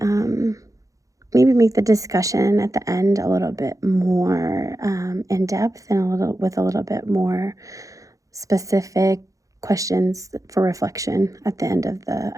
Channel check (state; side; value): late; left; 0.16 ms